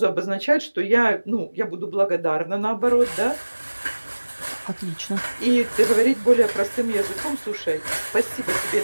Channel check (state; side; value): inverted; both; correlation -1.00